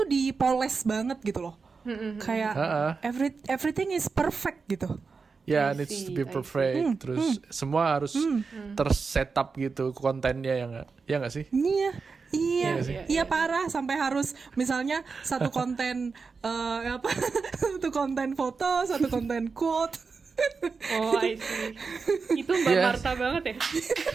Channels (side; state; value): left; quieter; 4.8 dB